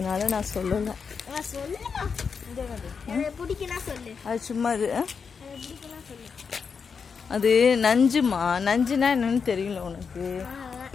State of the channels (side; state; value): right; quieter; 5.9 dB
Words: நான் சொல்லலை. அது சும்மா இது. அது நஞ்சுமா. நஞ்சுனா என்னன்னு தெரியல உனக்கு?